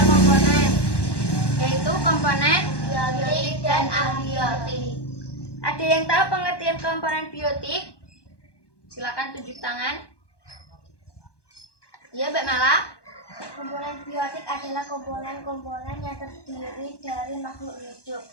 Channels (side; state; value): right; late; 1.1 ms